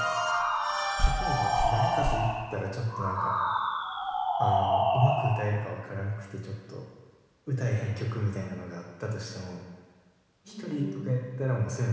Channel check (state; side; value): identical; both; correlation 1.00